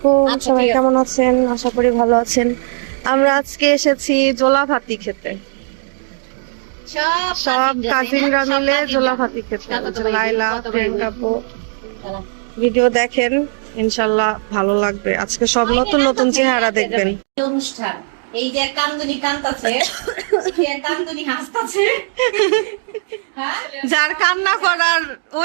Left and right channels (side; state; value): left; silent; 68 dB below the other